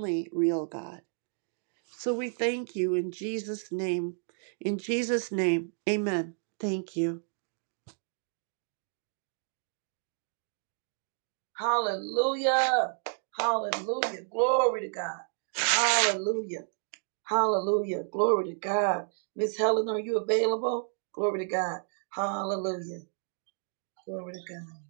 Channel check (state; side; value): silent; left; 57 dB below the other